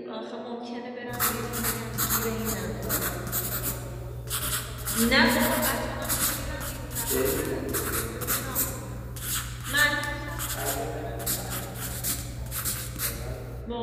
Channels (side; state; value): both; identical; correlation 1.00